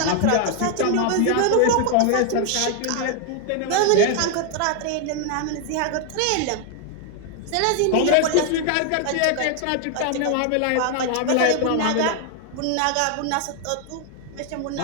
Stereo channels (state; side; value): different; both; correlation 0.00